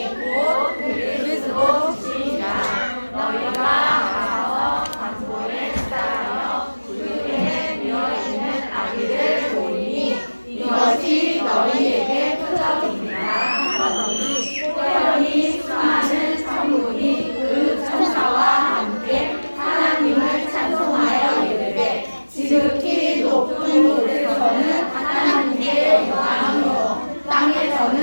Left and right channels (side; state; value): both; inverted; correlation -1.00